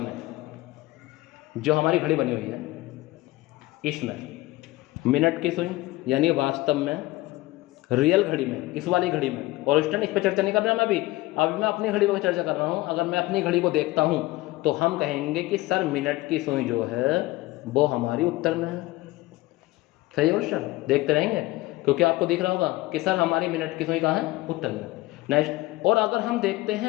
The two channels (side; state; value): right; quieter; 19.2 dB